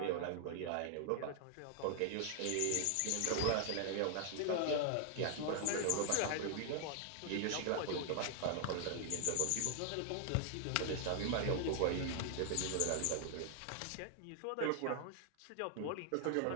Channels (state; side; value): different; both; correlation 0.00